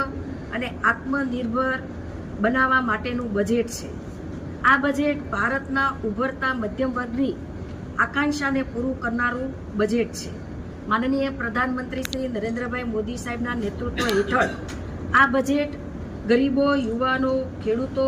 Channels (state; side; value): identical; both; correlation 1.00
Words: અને આત્મનિર્ભર બનાવવા માટેનું બજેટ છે. આ બજેટ ભારતના ઉભરતા મધ્યમ વર્ગની આકાંક્ષાને પૂરું કરનારું બજેટ છે. માનનીય પ્રધાનમંત્રી શ્રી નરેન્દ્રભાઈ મોદી સાહેબના નેતૃત્વ હેઠળ આ બજેટ ગરીબો, યુવાનો, ખેડૂતો